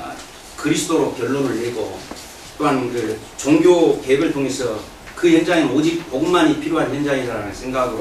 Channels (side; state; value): both; identical; correlation 1.00